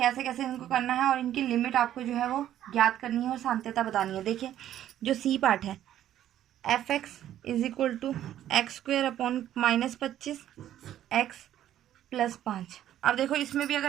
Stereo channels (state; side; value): quieter; left; 11.8 dB